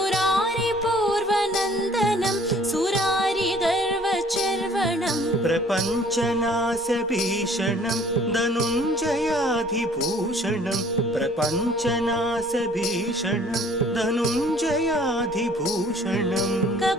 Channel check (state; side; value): normal; both; correlation 0.55